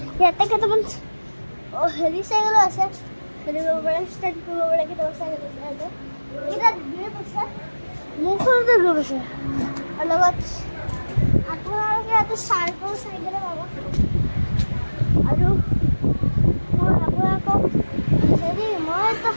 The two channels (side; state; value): both; inverted; correlation -1.00